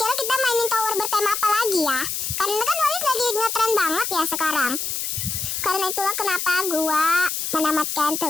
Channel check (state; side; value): noise; left; hiss, 2 dB below the sound